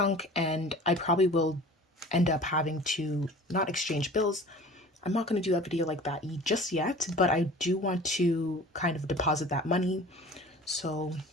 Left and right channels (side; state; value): both; normal; correlation 0.43